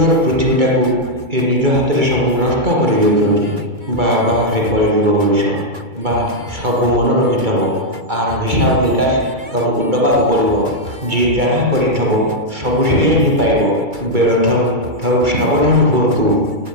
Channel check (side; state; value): left; late; 2.3 ms